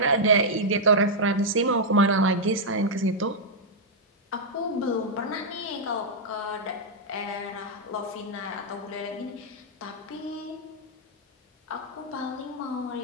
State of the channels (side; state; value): both; normal; correlation -0.05